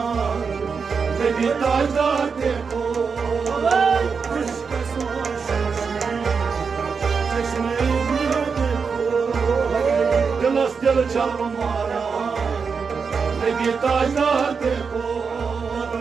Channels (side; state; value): left; quieter; 5.5 dB